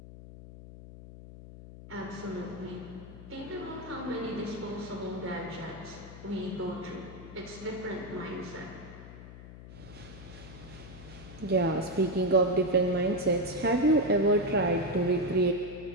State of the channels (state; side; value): noise; left; hum, 15 dB below the sound